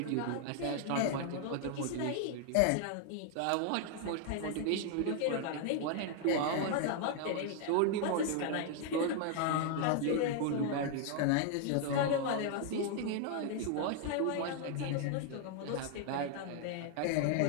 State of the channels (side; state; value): both; different; correlation 0.00